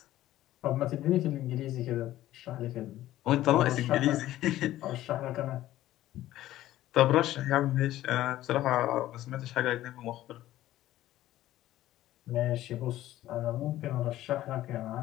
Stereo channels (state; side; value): quieter; right; 14.4 dB